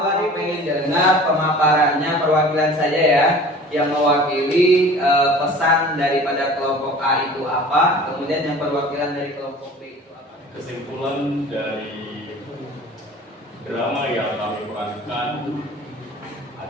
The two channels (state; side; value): normal; both; correlation 0.43